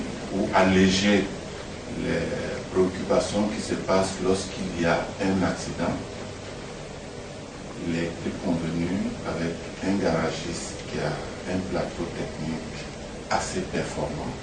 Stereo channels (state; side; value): identical; both; correlation 1.00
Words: ou alléger les préoccupations qui se passent lorsqu'il y a un accident, il est convenu avec un garagiste qui a un plateau technique assez performant.